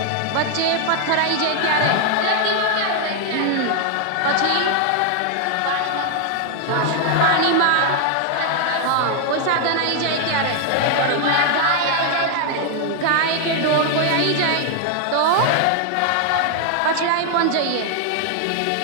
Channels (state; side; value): different; both; correlation 0.00